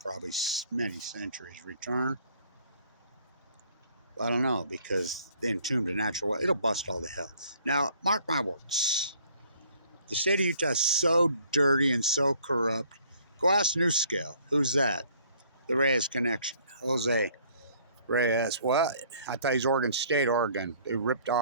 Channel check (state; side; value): inverted; both; correlation -0.59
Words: probably many centuries return? Well, I don't know, because they entombed a natural wetland. It'll bust all to hell. Now, mark my words. The state of Utah is so dirty and so corrupt. Go ask New Scale. Who's that? The Reyes connection. Jose Reyes. What? I thought he's Oregon State, Oregon. They ripped